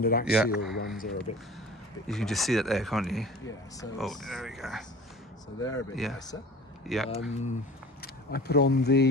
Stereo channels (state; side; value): normal; both; correlation 0.41